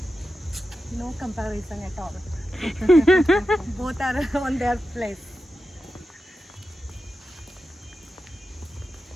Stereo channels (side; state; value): both; normal; correlation 0.91